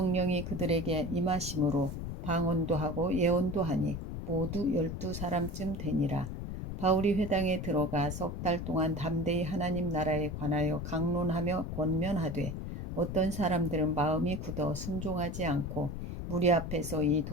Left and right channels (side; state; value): left; noise; rumble, 6 dB below the sound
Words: 그들에게 임하심으로 방언도 하고 예언도 하니 모두 12사람쯤 되니라. 바울이 회당에 들어가 석 달 동안 담대히 하나님 나라에 관하여 강론하며 권면하되 어떤 사람들은 마음이 굳어 순종하지 않고 무리 앞에서 이